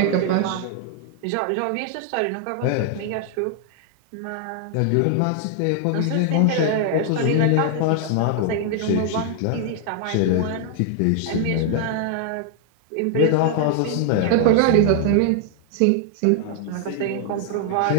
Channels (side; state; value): both; different; correlation 0.00